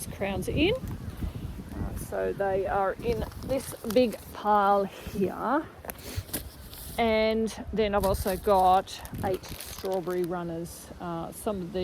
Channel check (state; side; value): identical; both; correlation 1.00